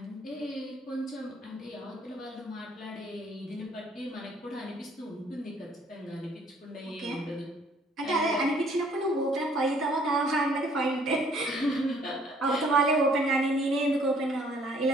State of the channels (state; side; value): normal; both; correlation 0.60